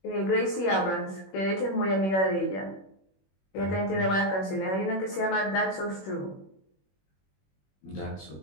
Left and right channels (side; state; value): right; late; 21 ms